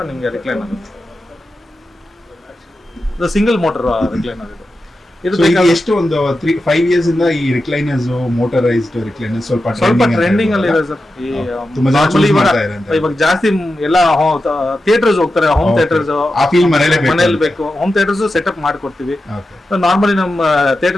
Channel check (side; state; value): both; normal; correlation 0.91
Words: ನಿಮ್ಗೆ ರಿಕ್ಲೈನರ್ ಇದು ಸಿಂಗಲ್ ಮೋಟರ್ ರಿಕ್ಲೈನರ್. ಇದು ಎಷ್ಟು ಒಂದು 5 ಇಯರ್ಸ್ ಇಂದ ಈ ರಿಕ್ಲೈನರ್ಸ್, ಮೋಟರೈಸ್ಡ್ ರಿಕ್ಲೈನರ್ಸ್ ಸ್ವಲ್ಪ ಟ್ರೆಂಡಿಂಗ್ ಅಲ್ಲಿ ಇದೆ ಸರ್. ಇವಾಗ ಜಾಸ್ತಿ ಎಲ್ಲ ಥಿಯೇಟರ್ಸ್ ಹೋಗ್ತಾರೆ, ಹೋಮ್ ಥಿಯೇಟರ್ಸ್. ಮನೇಲಿ ಬೇಕು, ಹೋಮ್ ಥಿಯೇಟರ್ಸ್ ಸೆಟಪ್ ಮಾಡ್ಕೊಡ್ತೀವಿ. ನಾರ್ಮಲಿ ನಮ್ಮ